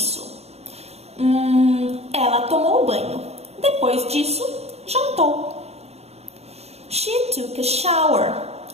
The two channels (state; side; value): late; left; 0.30 ms